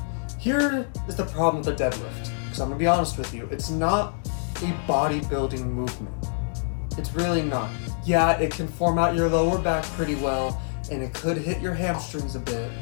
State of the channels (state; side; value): silent; right; digital silence